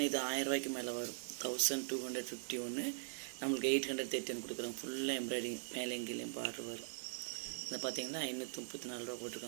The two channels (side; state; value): left; silent; 50 dB below the other